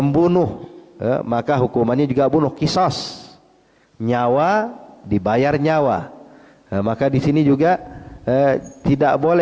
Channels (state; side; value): identical; both; correlation 1.00